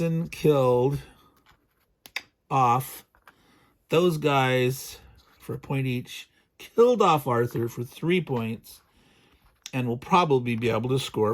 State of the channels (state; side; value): identical; both; correlation 1.00